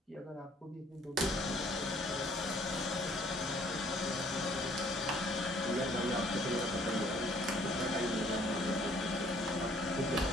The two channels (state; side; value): normal; both; correlation 0.60